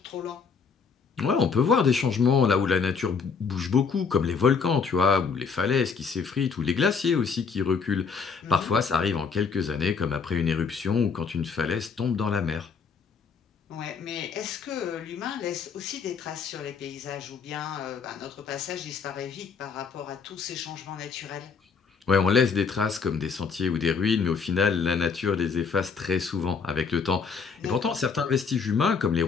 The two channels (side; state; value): right; quieter; 5.6 dB